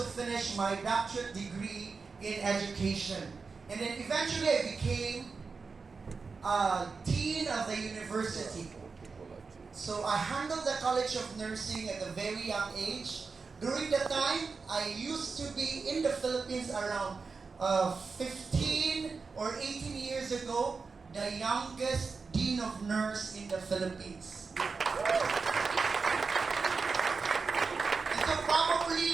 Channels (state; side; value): quieter; left; 4.7 dB